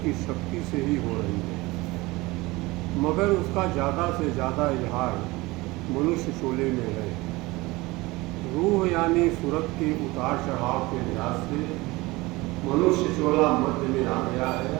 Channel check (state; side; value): quieter; left; 21.6 dB